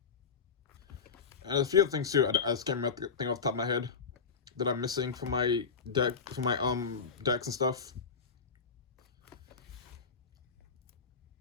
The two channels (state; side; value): quieter; right; 5.6 dB